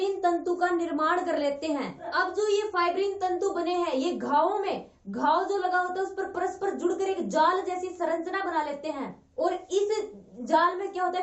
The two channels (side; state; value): both; identical; correlation 1.00